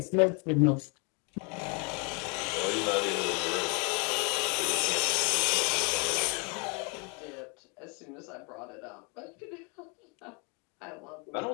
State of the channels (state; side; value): quieter; right; 33.4 dB